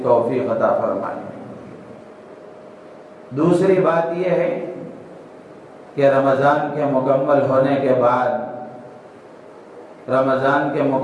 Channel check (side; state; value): both; identical; correlation 1.00